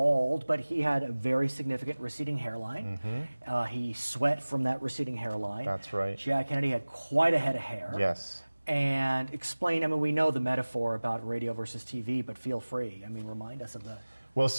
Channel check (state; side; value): inverted; both; correlation -1.00